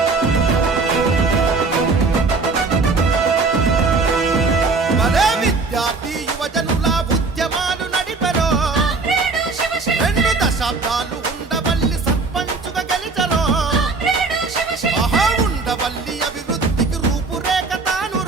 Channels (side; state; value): left; quieter; 4.0 dB